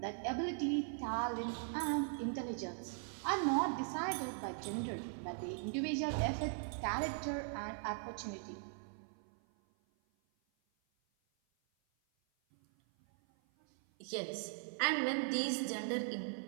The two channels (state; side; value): silent; left; 51 dB below the other